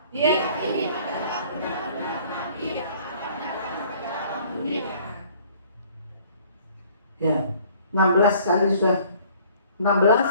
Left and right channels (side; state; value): both; inverted; correlation -0.55